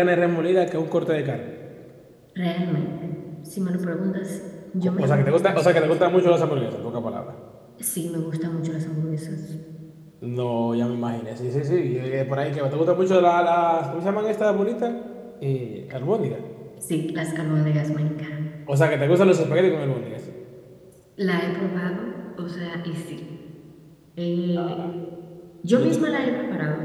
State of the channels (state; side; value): identical; both; correlation 1.00